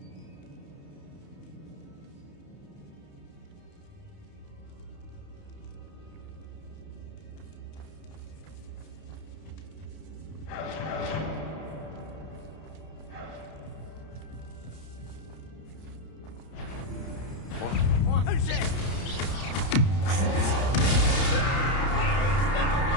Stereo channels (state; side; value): late; right; 31 ms